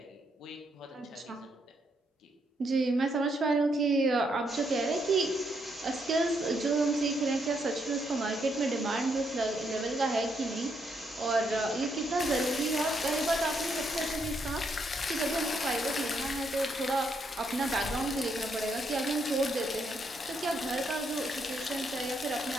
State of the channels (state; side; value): normal; both; correlation 0.76